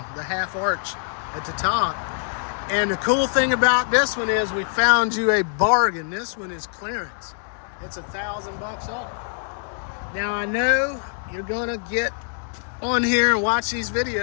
the half arch at the top. And the cool thing about this one is we found you a bargain. This one is clearance. It's $1,000 off. Now I know you're gonna get on here and watch these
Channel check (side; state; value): right; silent; digital silence